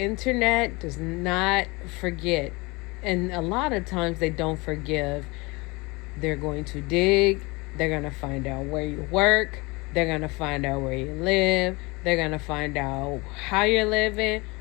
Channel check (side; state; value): right; quieter; 25.3 dB